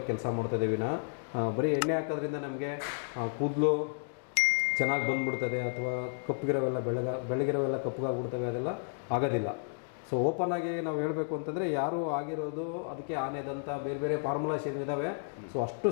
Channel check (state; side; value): silent; right; digital silence